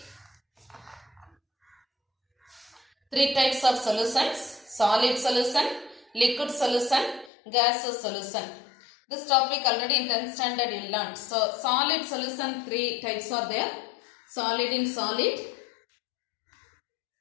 types of solutions. Solid solution, liquid solution, gaseous solution. This topic already in 10th standard you learned. So, solid solution, three types are there. Solid in solid,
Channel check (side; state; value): right; drops out; at 7.3 s